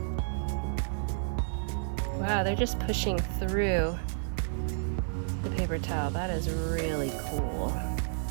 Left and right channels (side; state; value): left; silent; digital silence